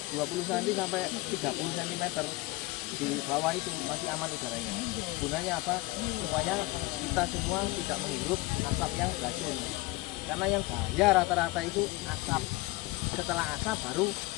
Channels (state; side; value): quieter; right; 21.1 dB